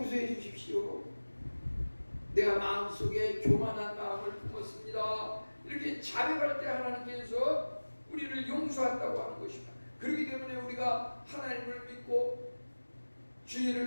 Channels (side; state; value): both; inverted; correlation -1.00